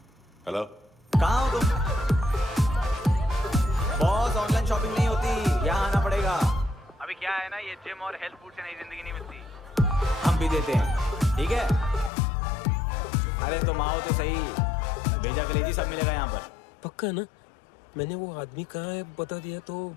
हेलो, कहाँ हो तुम? बॉस, ऑनलाइन शॉपिंग नहीं होती, यहाँ आना पड़ेगा। अभी क्या है ना, ये जिम और हेल्थ फूड से नई जिंदगी नहीं मिलती। हम भी देते हैं, ठीक है? अरे तुम आओ तो सही, भेजा कलेजी सब मिलेगा यहाँ पर। पक्का ना? मैंने वो आदमी कहाँ है बता दिया तो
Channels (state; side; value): drops out; right; at 12.1 s